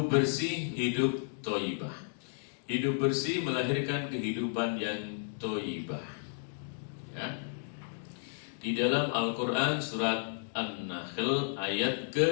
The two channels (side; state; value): right; silent; digital silence